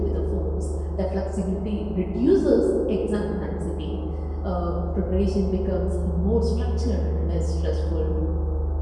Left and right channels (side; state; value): both; identical; correlation 1.00